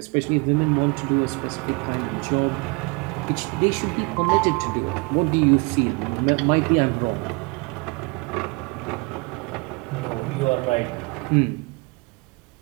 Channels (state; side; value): quieter; left; 29.2 dB